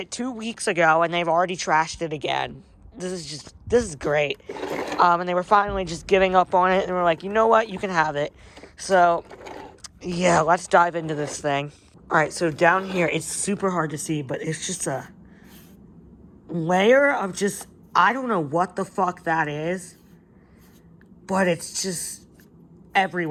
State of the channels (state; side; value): identical; both; correlation 1.00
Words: 2 weeks ago and they've already trashed it again. This is great. And they were finally just giving up on it and were like, you know what, you can have it. So, yeah, let's dive into this thing. Alright, so down here, it's super hard to see, but it's just a layer of just, I don't know what the fuck that is, but it's just